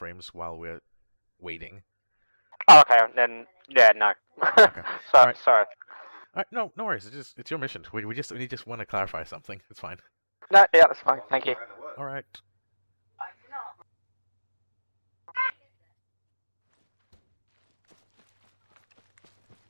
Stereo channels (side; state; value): both; inverted; correlation -1.00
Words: while we're waiting. Oh, okay, then yeah, no. Okay. Sorry. All right, no worries. It's your mission. We just want to clarify something. It's fine. No, yeah, that's fine. Thank you. All right.